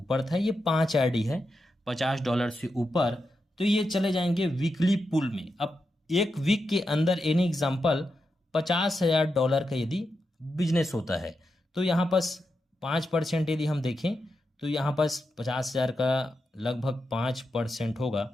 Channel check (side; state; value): both; normal; correlation 0.87